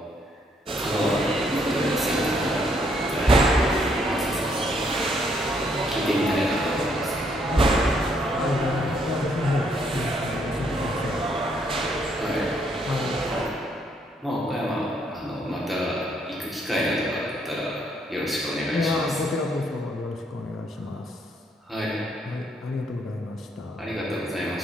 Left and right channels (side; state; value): both; normal; correlation 0.70